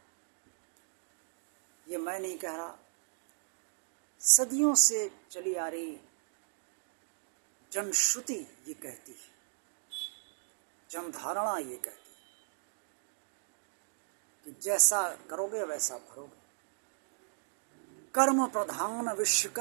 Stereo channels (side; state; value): left; silent; digital silence